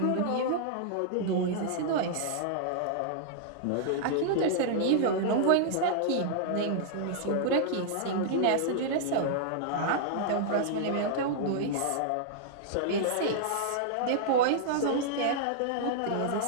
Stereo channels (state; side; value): different; both; correlation -0.01